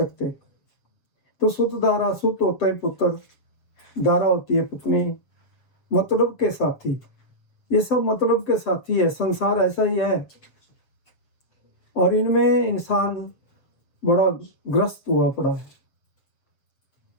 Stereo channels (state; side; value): late; right; 7.3 ms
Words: तो सुत धारा, सुत होता है पुत्र, धारा होती है पत्नी, मतलब के साथी, ये सब मतलब के साथी है। संसार ऐसा ही है, और इनमें इंसान बड़ा ग्रस्त हुआ पड़ा है।